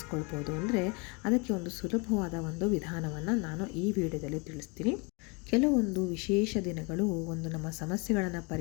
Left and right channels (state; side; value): quieter; right; 30.4 dB